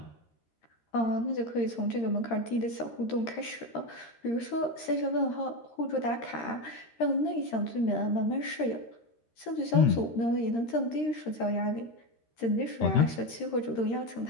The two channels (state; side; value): late; right; 13 ms